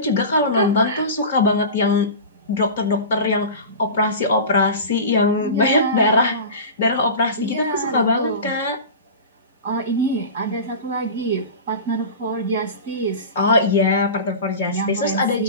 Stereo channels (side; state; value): both; inverted; correlation -0.31